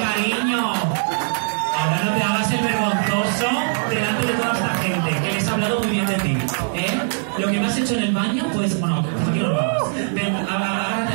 Ahora no te hagas el vergonzoso delante de toda esta gente, que les ha hablado muy bien de ti, ¿eh? Lo que me has hecho en el baño, pues, bueno, aquí no lo hagas. Ven,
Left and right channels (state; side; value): silent; left; digital silence